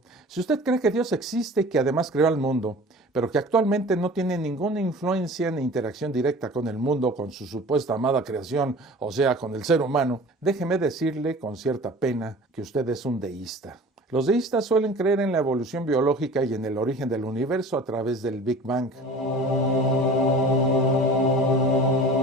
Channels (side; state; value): both; normal; correlation 0.42